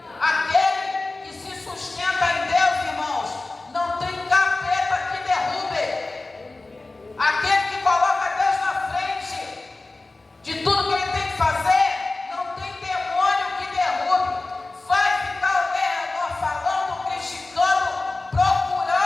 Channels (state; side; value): quieter; right; 3.2 dB